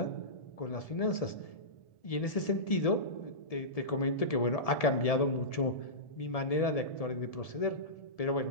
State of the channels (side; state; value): right; late; 1.7 ms